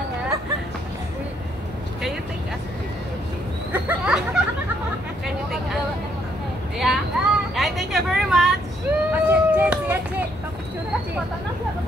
nga. Can you take us? Can you take us? Yeah? Yeah, thank you very much. Che, siya, Che. Papicture ka, Che.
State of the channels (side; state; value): both; normal; correlation 0.71